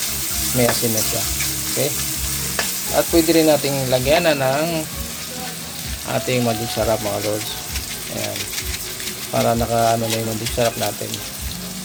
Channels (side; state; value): both; identical; correlation 1.00